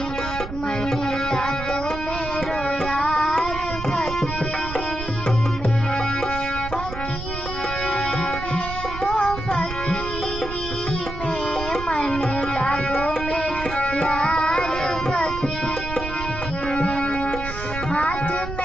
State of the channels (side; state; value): right; noise; rumble, 8 dB below the sound